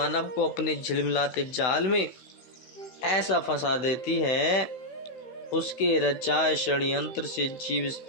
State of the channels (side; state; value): right; late; 16 ms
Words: को अपने झिलमिलाते जाल में ऐसा फंसा देती है, उसके रचाए षड्यंत्र से जीव इस